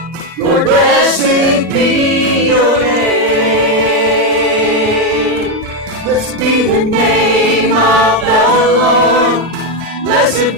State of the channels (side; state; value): right; late; 2.5 ms